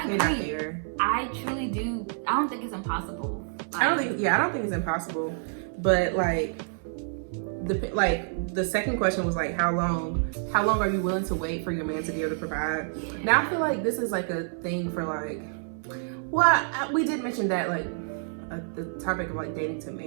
agree. Not fair. I truly do. I don't think it's impossible. I don't think it's impossible. But the second question was like, how long are you willing to wait for your man to be able to provide? Now I feel like this is like a thing for like, well, we did mention that like the topic of like dating to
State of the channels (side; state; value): left; silent; 59 dB below the other